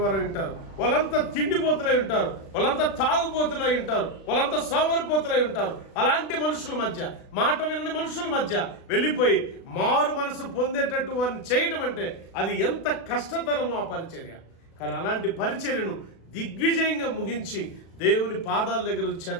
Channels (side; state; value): right; late; 36 ms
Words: వారై ఉంటారు, వాళ్ళంతా తిండిపోతులై ఉంటారు, వాళ్ళంతా తాగుపోతులై ఉంటారు, వాళ్ళంతా సోమరిపోతులై ఉంటారు. అలాంటి మనుషుల మధ్య, మాట వినని మనుషుల మధ్య వెళ్ళిపోయి మారు మనసు పొందేటట్టు వారిని చేయడం అంటే అది ఎంత కష్టతరమో ఆ పరిచర్య. కానీ అలాంటి పరిచర్యను దిగ్విజయంగా ముగించి దేవుని పాదాల దగ్గర